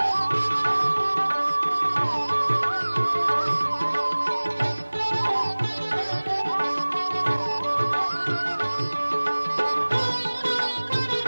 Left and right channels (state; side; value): inverted; both; correlation -1.00